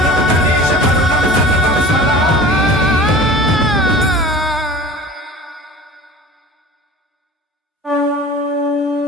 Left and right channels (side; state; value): both; normal; correlation 0.40